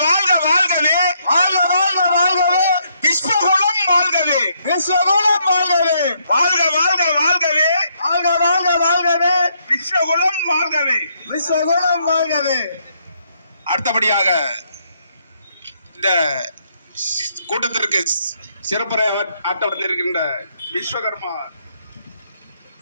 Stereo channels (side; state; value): both; inverted; correlation -0.73